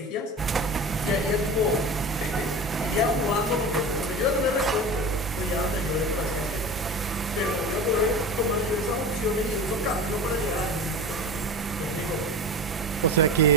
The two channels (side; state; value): both; normal; correlation 0.32